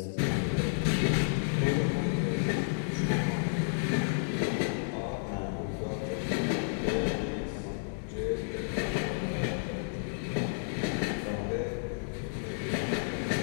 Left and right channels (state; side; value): silent; right; digital silence